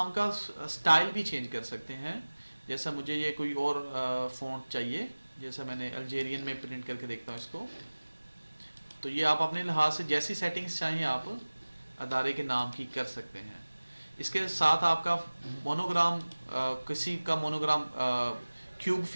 का स्टाइल भी चेंज कर सकते हैं। जैसा मुझे ये कोई और फ़ॉन्ट चाहिए, जैसा मैंने अल्जेरियन में प्रिंट करके देखता हूँ इसको, तो ये आप अपने लिहाज से जैसी सेटिंग्स चाहें आप अदारे के नाम की कर सकते हैं। इसके साथ आपका मोनोग्राम, किसी का मोनोग्राम क्यूब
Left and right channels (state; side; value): inverted; both; correlation -1.00